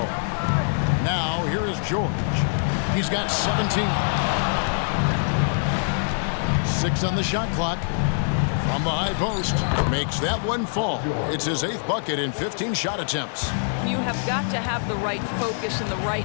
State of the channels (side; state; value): right; silent; 62 dB below the other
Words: Now here is George. He's got 17. 6 on the shot clock. From the high post. Makes that one fall. It's his 8th bucket in 15 shot attempts. You have got to have the right focus and the right